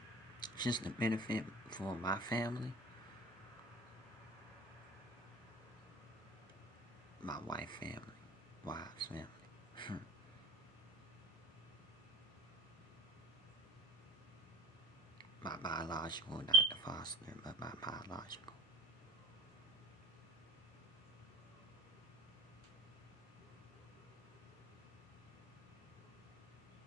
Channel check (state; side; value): normal; both; correlation 0.43